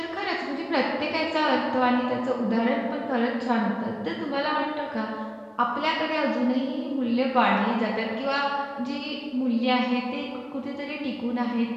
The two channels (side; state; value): both; identical; correlation 1.00